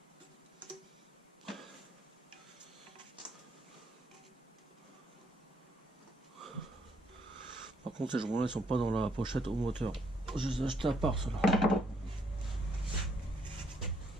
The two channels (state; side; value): normal; both; correlation 0.70